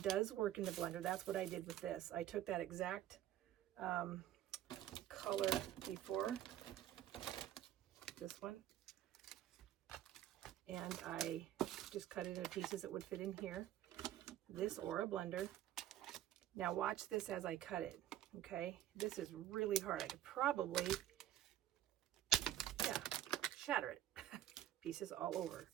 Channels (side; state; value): left; quieter; 12.3 dB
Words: does work in the blender. That's what I did with this. I took that exact color before, this one, and I just cut it into pieces that would fit in here, this or a blender. Now watch this as I cut it, okay? This is really hard. I could probably, yeah, shatter it. Pieces all over.